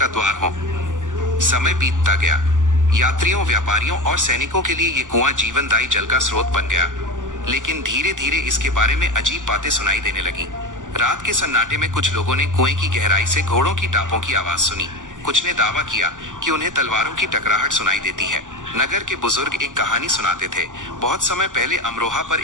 द्वार हो। समय बीतता गया। यात्रियों, व्यापारियों और सैनिकों के लिए ये कुआं जीवनदायी जल का स्रोत बन गया। लेकिन धीरे धीरे इसके बारे में अजीब बातें सुनाई देने लगीं। रात के सन्नाटे में कुछ लोगों ने कुएं की गहराई से घोड़ों की टापों की आवाज सुनी। कुछ ने दावा किया कि उन्हें तलवारों की टकराहट सुनाई देती है। नगर के बुजुर्ग एक कहानी सुनाते थे। बहुत समय पहले अमरोहा पर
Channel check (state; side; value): late; left; 0.87 ms